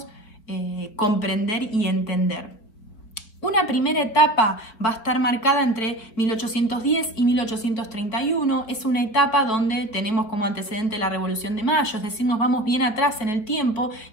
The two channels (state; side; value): late; right; 4.4 ms